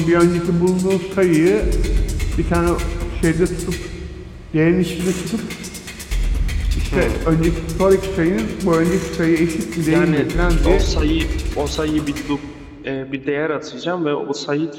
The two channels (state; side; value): identical; both; correlation 1.00